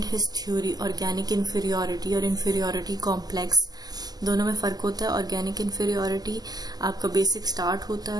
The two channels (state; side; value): late; left; 0.19 ms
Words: his theory organic inferiority और इंफीरियोरिटी कॉम्प्लेक्स। दोनों में फर्क होता है। ऑर्गेनिक इंफीरियोरिटी आपका बेसिक स्टार्ट होता